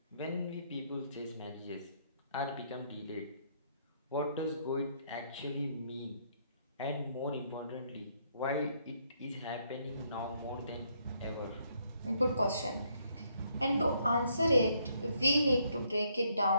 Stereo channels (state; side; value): inverted; both; correlation -0.71